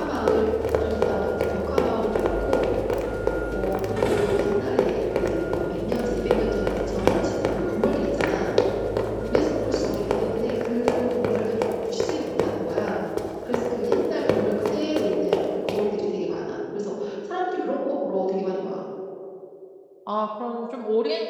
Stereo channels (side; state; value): both; identical; correlation 1.00